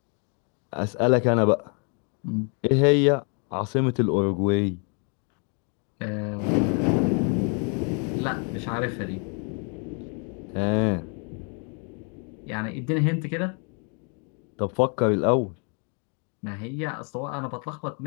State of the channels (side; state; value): right; quieter; 37.9 dB